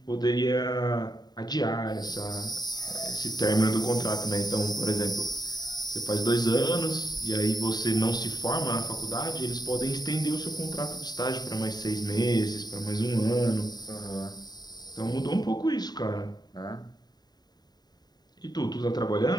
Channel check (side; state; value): right; late; 0.20 ms